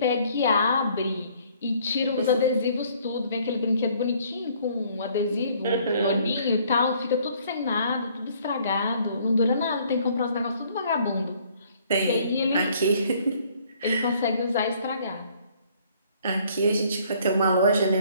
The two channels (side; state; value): both; inverted; correlation -0.61